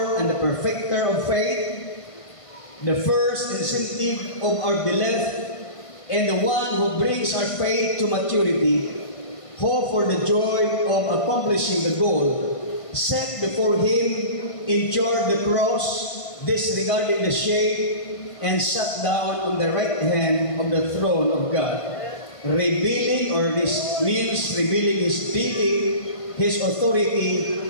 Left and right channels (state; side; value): late; right; 1.5 ms